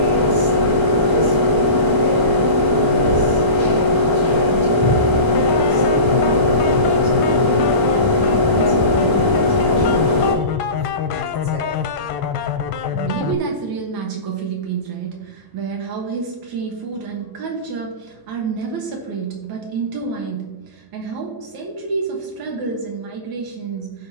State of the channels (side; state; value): left; late; 1.0 ms